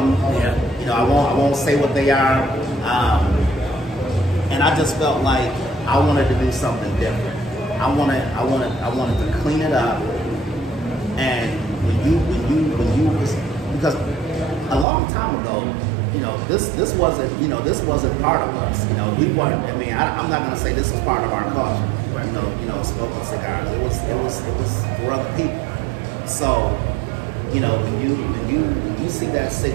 Yeah. You know, I won't say what they are, and I just felt like I wanted to do something different. I wanted to clean it up, and because a long time ago, you know, this wasn't part of us. You know, we weren't. I mean, I'm not gonna say this was part of our culture. You know, smoking cigars. It was for other people. So, you know, when you see that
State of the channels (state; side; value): drops out; left; at 14.9 s